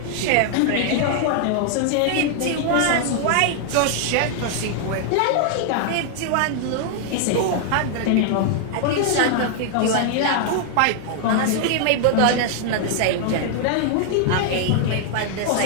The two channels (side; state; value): both; different; correlation 0.00